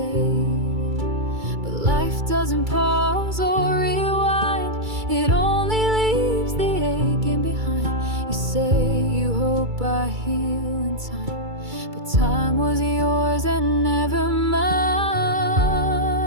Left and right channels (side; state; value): left; late; 2.3 ms